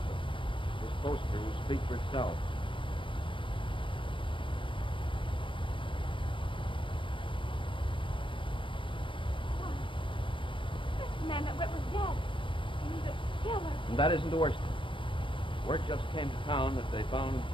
but this poster will speak for itself. The man that went was dead. He's a killer. And that isn't the worst. Word just came to town that they found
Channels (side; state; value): right; late; 0.25 ms